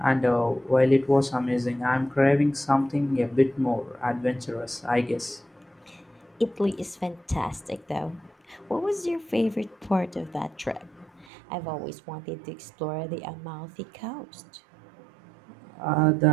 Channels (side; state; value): left; drops out; at 11.2 s